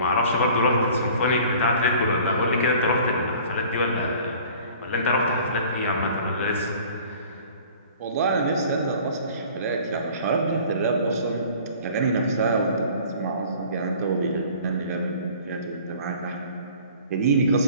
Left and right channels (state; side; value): inverted; both; correlation -0.48